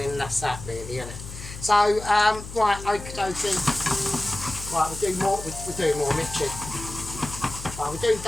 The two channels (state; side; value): noise; left; hum, 12 dB below the sound